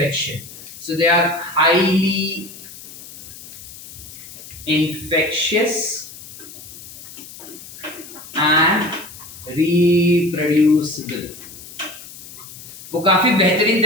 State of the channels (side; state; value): left; noise; hiss, 16 dB below the sound